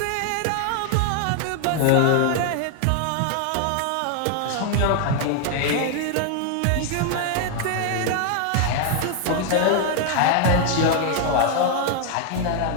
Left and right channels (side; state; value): both; different; correlation 0.00